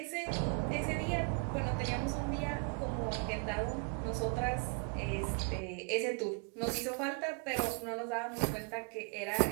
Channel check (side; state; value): left; quieter; 39.0 dB